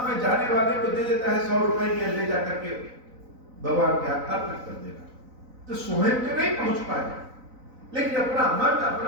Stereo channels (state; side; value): late; left; 4.0 ms